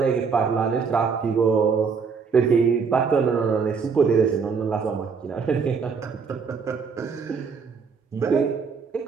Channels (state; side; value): quieter; left; 5.6 dB